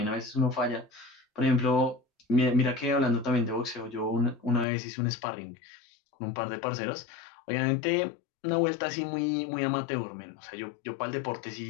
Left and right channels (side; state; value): right; drops out; at 4.7 s